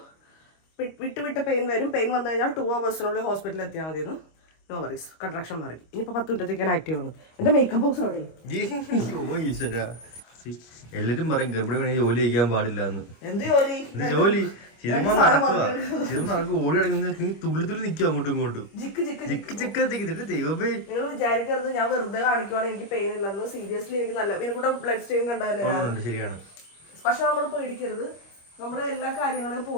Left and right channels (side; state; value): right; late; 25 ms